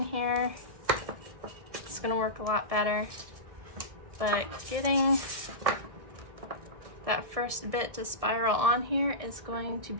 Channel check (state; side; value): late; left; 1.5 ms